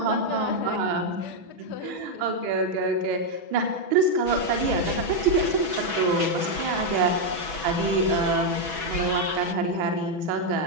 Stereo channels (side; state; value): left; late; 6.1 ms